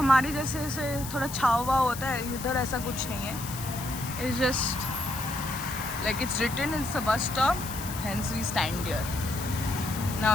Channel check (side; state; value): left; noise; hiss, 10 dB below the sound